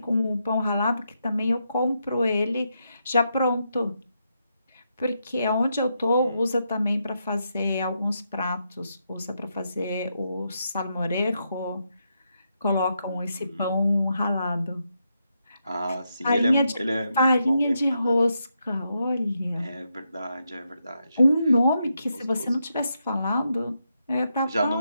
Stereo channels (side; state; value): both; inverted; correlation -0.82